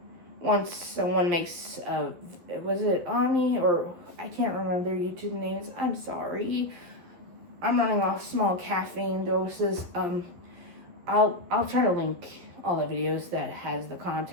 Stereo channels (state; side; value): late; left; 12 ms